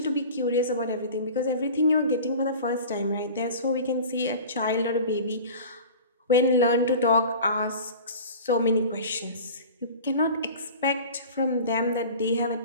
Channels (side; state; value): both; inverted; correlation -0.38